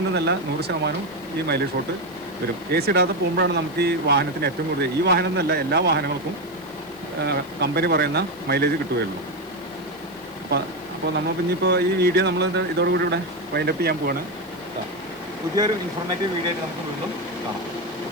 100% ഈ മൈലേജ് ഷോർട്ട് വരും. AC ഇടാതെ പോകുമ്പോഴാണ് നമുക്ക് ഈ വാഹനത്തിന് ഏറ്റവും കൂടുതൽ, ഈ വാഹനം എന്നല്ല എല്ലാ വാഹനങ്ങൾക്കും കമ്പനി പറയുന്ന മൈലേജ് കിട്ടുകയുള്ളൂ. അപ്പോൾ നമ്മൾ ഇനിയിപ്പോൾ ഈ വീഡിയോ നമ്മൾ ഇതോടുകൂടി ഇവിടെ വൈൻഡപ്പ് ചെയ്യാൻ പോവാണ്. പുതിയൊരു ഇൻഫോർമേറ്റീവ് വീഡിയോ ആയിട്ട് നമുക്ക് വീണ്ടും കാണാം.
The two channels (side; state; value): left; noise; hiss, 24 dB below the sound